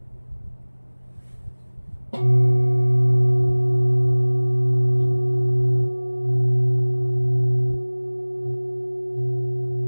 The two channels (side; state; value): both; inverted; correlation -1.00